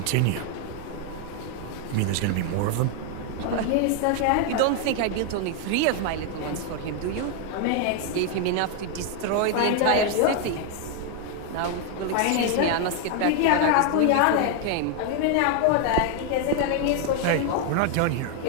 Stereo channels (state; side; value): different; both; correlation 0.00